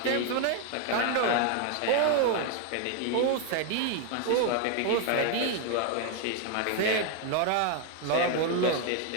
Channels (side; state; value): both; different; correlation 0.01